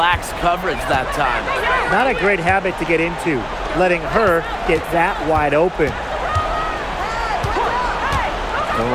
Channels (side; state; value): both; identical; correlation 1.00